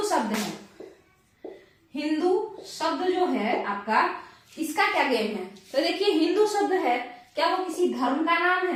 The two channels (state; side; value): identical; both; correlation 1.00